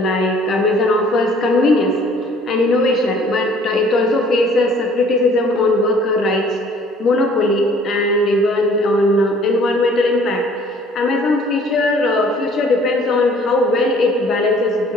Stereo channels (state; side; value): normal; both; correlation 0.55